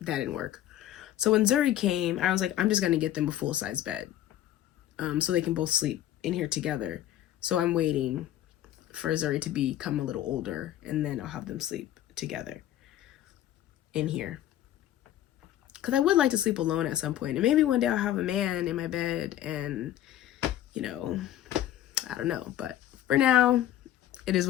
didn't work. So when Zuri came, I was like, I'm just going to get them a full-size bed, so they can both sleep in here together. So I'm waiting for Zuri to become a little older, and then I'll have them sleep together in here. Because I would like to sleep alone at some point. And maybe one day I'll have a man in my bed, and, I don't know. But for now, it is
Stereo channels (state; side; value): quieter; right; 12.5 dB